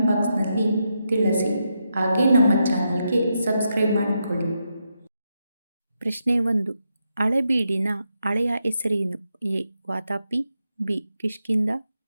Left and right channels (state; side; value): inverted; both; correlation -0.83